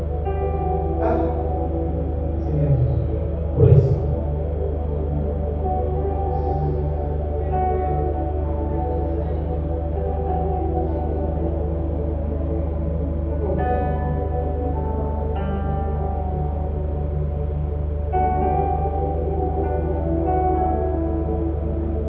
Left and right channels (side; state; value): both; identical; correlation 1.00